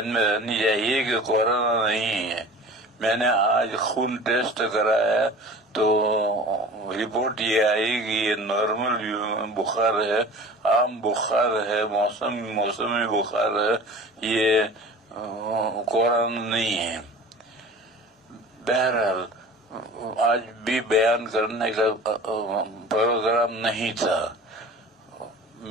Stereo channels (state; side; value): normal; both; correlation 0.40